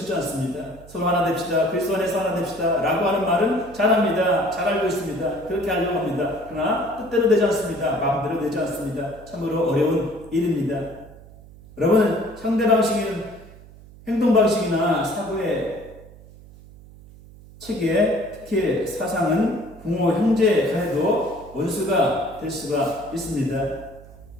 않습니다. 서로 하나 됩시다. 그리스도 안에서 하나 됩시다. 라고 하는 말은 잘합니다. 잘 알고 있습니다. 그렇게 하려고 합니다. 그러나 뜻대로 되지 않습니다. 마음대로 되지 않습니다. 참으로 어려운 일입니다. 여러분, 상대 방식은 행동 방식이나 사고의 체계, 특히 사상은 부모, 형제 간에도 원수가 될 수가 있습니다.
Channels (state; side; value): noise; right; hum, 20 dB below the sound